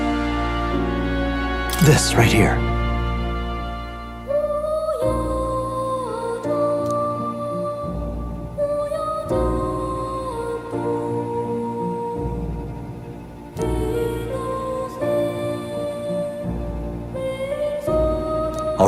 This right here. All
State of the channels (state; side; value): identical; both; correlation 1.00